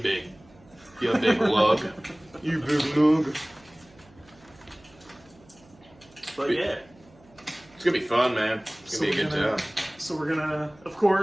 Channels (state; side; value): noise; right; hum, 27 dB below the sound